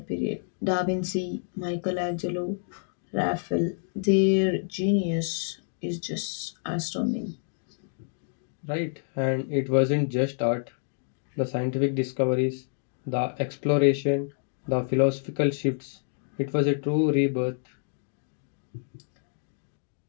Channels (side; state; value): right; silent; digital silence